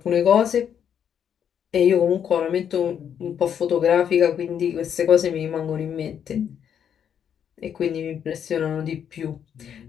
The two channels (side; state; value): right; quieter; 8.5 dB